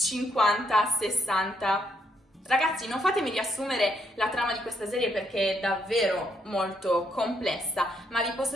Ragazzi, non fatemi riassumere la trama di questa serie perché è davvero molto complessa, ma vi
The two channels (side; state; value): both; normal; correlation 0.74